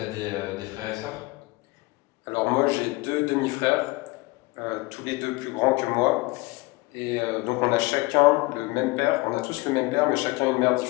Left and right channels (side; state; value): right; quieter; 23.0 dB